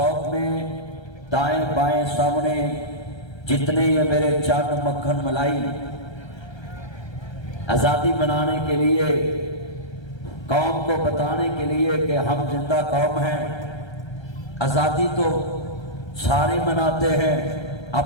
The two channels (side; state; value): right; late; 1.3 ms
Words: میں دائیں بائیں سامنے جتنے یہ میرے چاند مکھن ملائی آزادی منانے کے لیے قوم کو بتانے کے لیے کہ ہم زندہ قوم ہیں. آزادی تو سارے مناتے ہیں،